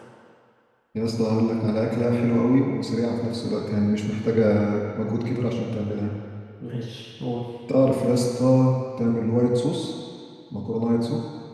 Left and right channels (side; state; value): both; identical; correlation 1.00